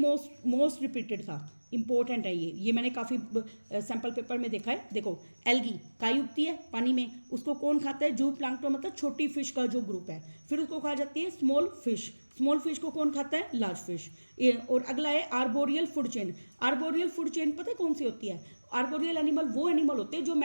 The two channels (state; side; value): inverted; both; correlation -1.00